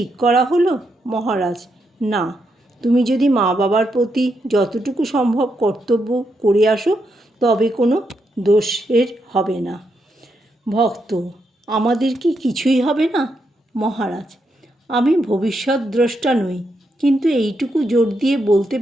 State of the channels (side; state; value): both; normal; correlation 0.81